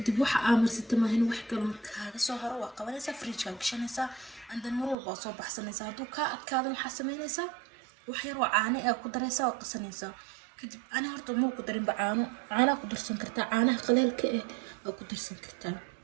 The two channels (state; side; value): drops out; left; at 5.0 s